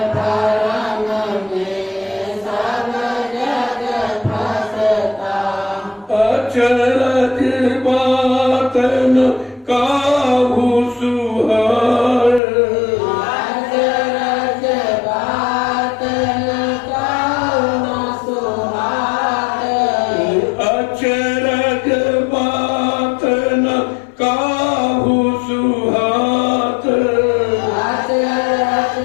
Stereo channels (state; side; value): drops out; right; at 12.4 s